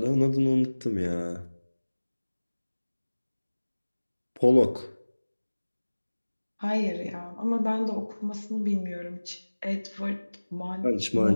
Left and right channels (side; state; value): both; inverted; correlation -1.00